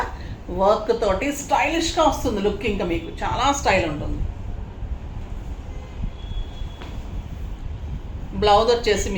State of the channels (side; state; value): both; identical; correlation 1.00